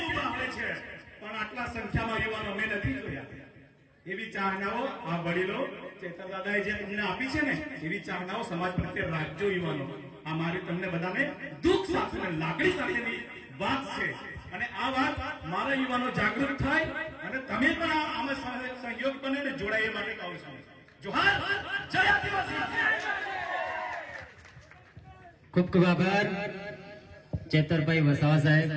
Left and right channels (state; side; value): identical; both; correlation 1.00